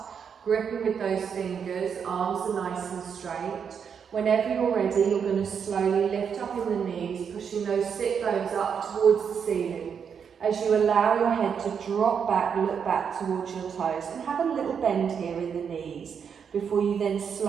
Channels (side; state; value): left; quieter; 7.0 dB